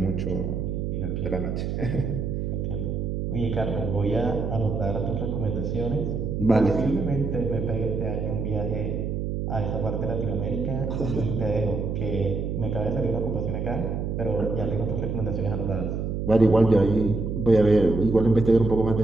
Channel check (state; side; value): noise; right; hum, 2 dB below the sound